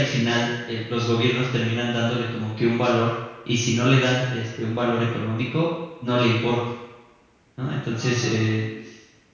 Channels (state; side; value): identical; both; correlation 1.00